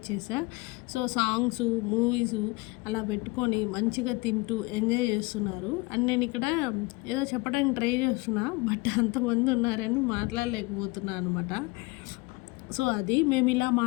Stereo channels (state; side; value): quieter; right; 24.6 dB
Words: సో, సాంగ్స్, మూవీస్ అలా పెట్టుకొని మంచిగా తింటూ ఎంజాయ్ చేస్తున్నారు. అండ్ నేను ఇక్కడ ఏదో చెప్పడానికి ట్రై చేస్తున్నా, బట్ అంతమంది ఉన్నారని మాట్లాడలేకపోతున్నా అనమాట. సో, అది మేము ఇలా